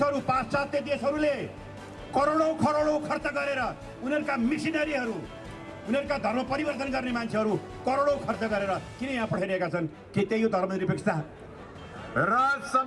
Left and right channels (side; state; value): both; identical; correlation 1.00